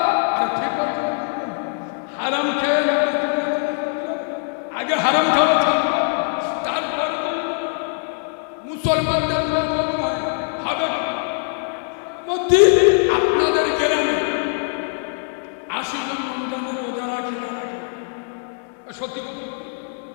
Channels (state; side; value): silent; right; 59 dB below the other